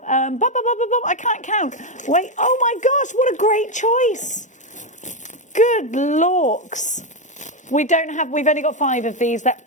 I can't count. Wait, oh my gosh, what a great choice. Good lorks. We've only got 5 of these. They're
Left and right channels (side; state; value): both; normal; correlation 0.07